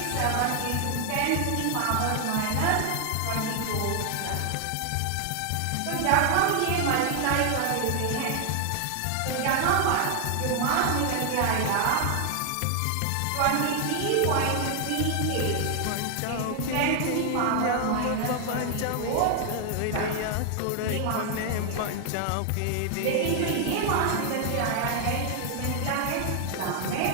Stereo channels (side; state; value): both; different; correlation 0.00